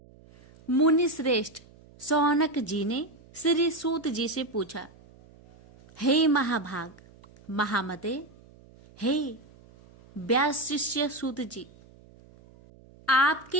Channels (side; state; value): right; noise; hum, 25 dB below the sound